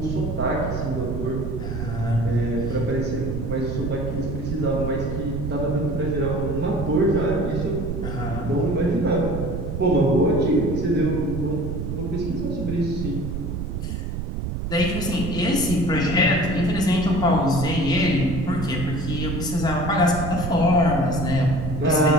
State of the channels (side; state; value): right; noise; rumble, 4 dB below the sound